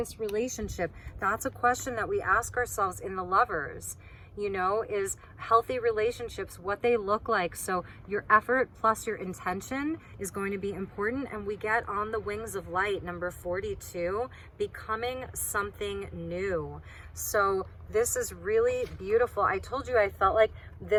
relationship? That's a question that we ask ourselves in the Lovers. You know, is healthy relationships, what they look like. So your effort plus your intention is going to be important. And we get on the wings of light, number 42, becoming something new. So this is really beautiful. I told you I felt like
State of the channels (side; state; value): both; identical; correlation 1.00